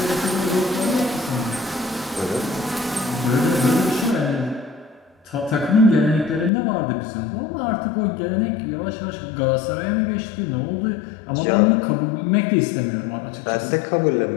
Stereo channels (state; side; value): drops out; right; at 6.5 s